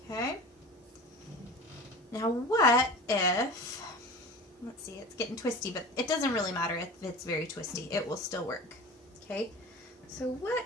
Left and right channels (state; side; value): normal; both; correlation 0.36